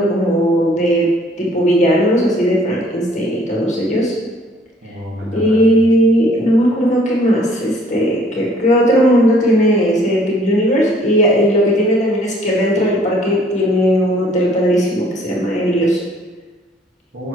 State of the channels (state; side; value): normal; both; correlation 0.59